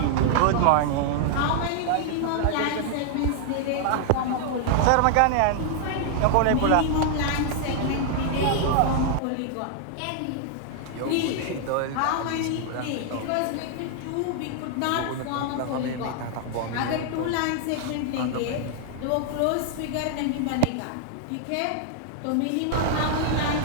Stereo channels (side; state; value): both; different; correlation 0.00